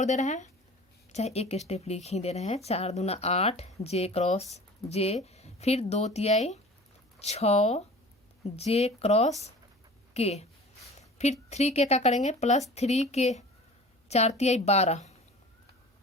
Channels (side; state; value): both; normal; correlation 0.42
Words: दे रहे हैं, चाहे एक स्टेप लिख ही दे रहे हैं। 4 दूना 8 जे क्रॉस जे, फिर 2 तिहाई 6 जे क्रॉस के, फिर 3 के का करेंगे प्लस 3 के 4 तिहाई 12,